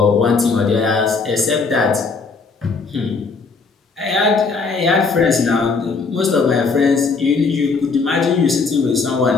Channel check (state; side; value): quieter; right; 4.5 dB